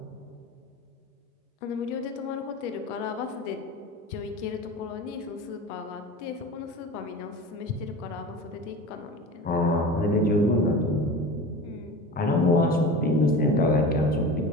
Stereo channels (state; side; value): normal; both; correlation 0.33